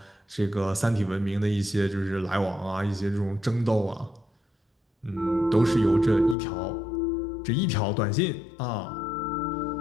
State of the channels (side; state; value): right; drops out; at 6.4 s